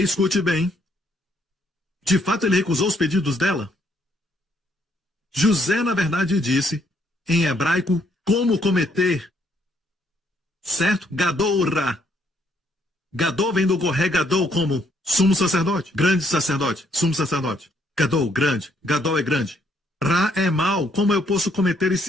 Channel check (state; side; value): normal; both; correlation 0.70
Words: escute bem. De fato, ele recusou os pedidos dela. José, na verdade, disse, em hebraico, como cometer. Certo? Gadol-ra. Gadol vem do Goré Gadol como sumo sacerdote, grande sacerdote, sumo sacerdote. Gadol, grande. Gadol é grande. Ra é mal. Como eu posso cometer